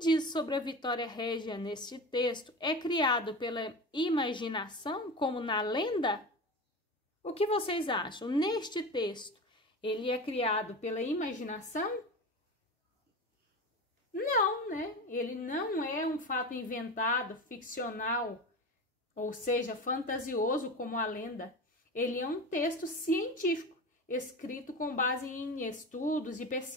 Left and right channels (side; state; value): both; normal; correlation 0.28